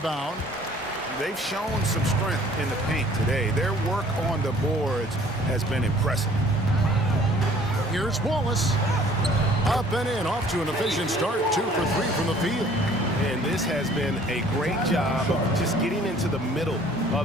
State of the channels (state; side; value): normal; both; correlation 0.54